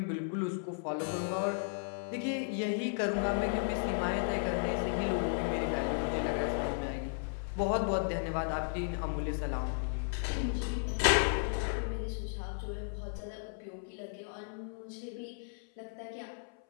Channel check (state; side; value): silent; right; 55 dB below the other